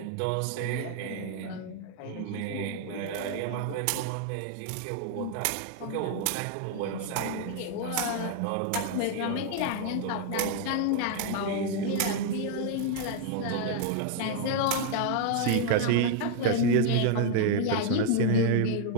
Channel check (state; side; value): different; both; correlation 0.00